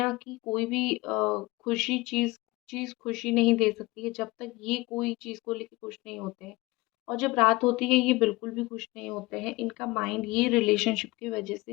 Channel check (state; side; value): quieter; right; 21.6 dB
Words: की कोई भी खुशी चीज़ खुशी नहीं दे सकती है, जब तक ये कोई चीज़ को लेके खुश नहीं होते हैं। और जब रात होती है, ये बिल्कुल भी खुश नहीं होते हैं। इनका माइंड ये रिलेशनशिप की वजह